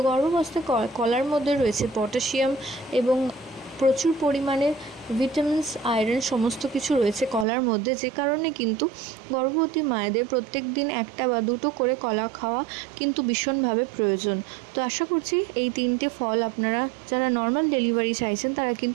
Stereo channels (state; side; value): drops out; left; at 7.5 s